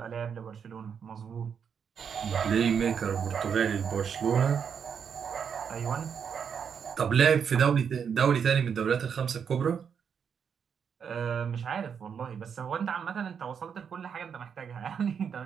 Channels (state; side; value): quieter; left; 7.1 dB